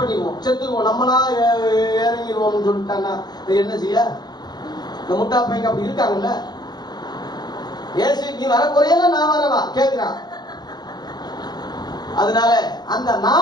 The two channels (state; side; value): late; right; 0.20 ms